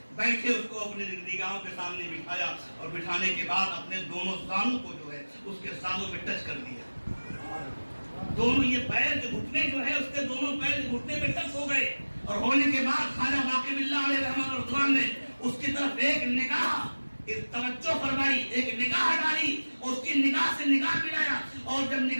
بیٹھے اس کو اپنے نگاہوں کے سامنے بٹھایا, اور بٹھانے کے بعد اپنے دونوں زانوں کو جو ہے اس کے زانوں میں ٹچ کر دیا. دونوں یہ پیر کے گھٹنے جو ہے اس کے دونوں پیر کے گھٹنے پہ ٹچ ہو گئے. اور ہونے کے بعد خواجہ باقی باللہ علیہ رحمہ و رضوان نے اس کی طرف ایک نگاہ توجہ فرمائی, ایک نگاہ ڈالی, اس کی نگاہ سے نگاہ ملایا. اور جب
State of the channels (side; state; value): both; inverted; correlation -1.00